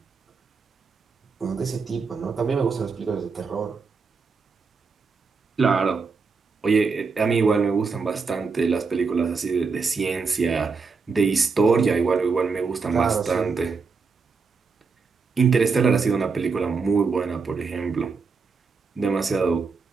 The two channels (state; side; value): quieter; left; 4.9 dB